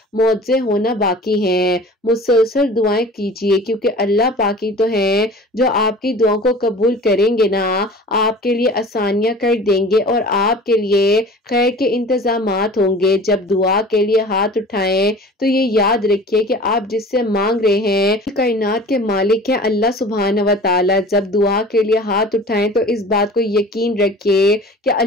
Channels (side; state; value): both; normal; correlation 0.42